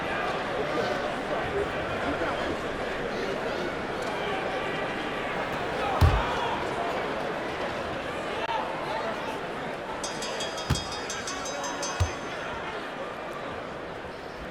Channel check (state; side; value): identical; both; correlation 1.00